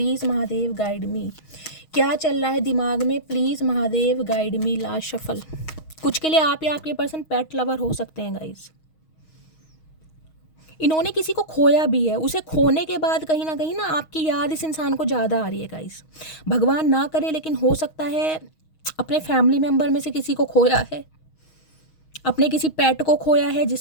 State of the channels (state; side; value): late; right; 6.3 ms